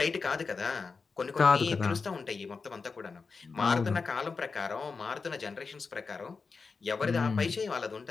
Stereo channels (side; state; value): right; quieter; 4.7 dB